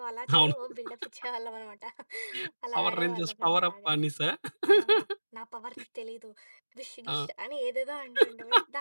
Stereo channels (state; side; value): inverted; both; correlation -1.00